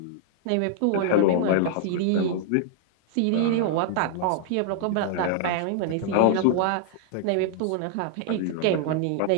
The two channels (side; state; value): both; different; correlation -0.01